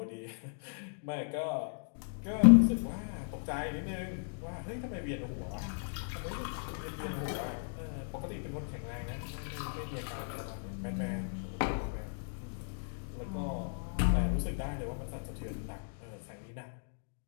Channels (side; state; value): right; silent; digital silence